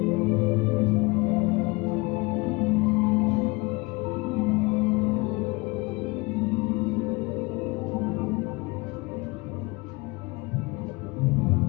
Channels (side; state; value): right; quieter; 25.0 dB